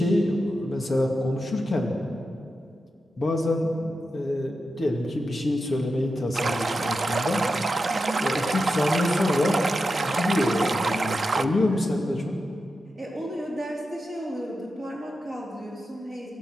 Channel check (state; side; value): normal; both; correlation 0.89